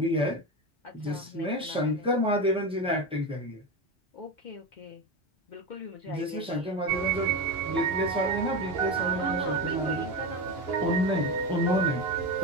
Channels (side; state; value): both; normal; correlation 0.20